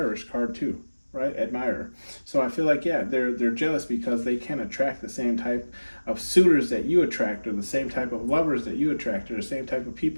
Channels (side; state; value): both; inverted; correlation -1.00